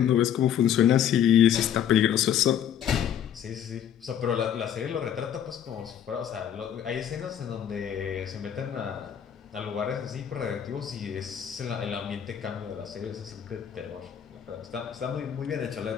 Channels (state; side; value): quieter; right; 9.5 dB